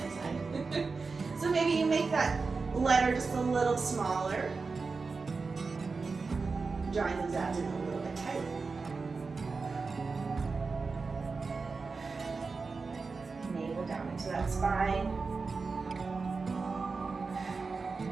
side. So maybe you make that letter just a little smaller. Drawing those abs in a little bit tighter. Down into that spine.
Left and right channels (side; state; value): left; quieter; 4.4 dB